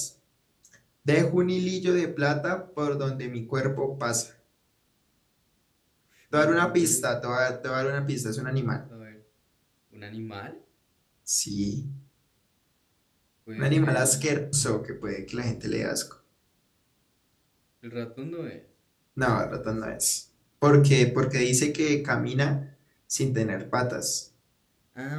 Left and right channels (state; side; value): identical; both; correlation 1.00